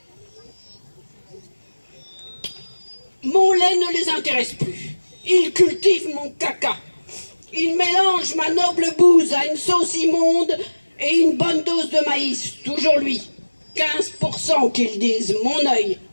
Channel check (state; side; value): inverted; both; correlation -1.00